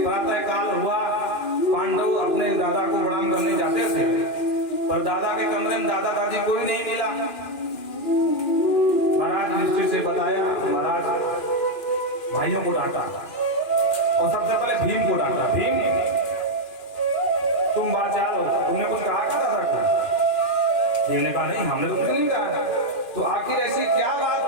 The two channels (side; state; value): right; late; 2.4 ms